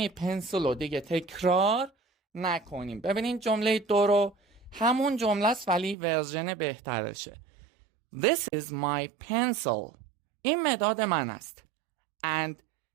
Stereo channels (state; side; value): drops out; left; at 6.0 s